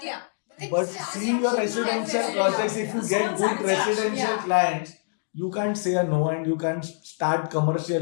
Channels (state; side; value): silent; right; digital silence